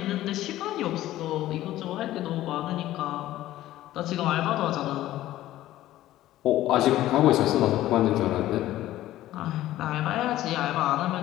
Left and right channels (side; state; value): right; quieter; 14.6 dB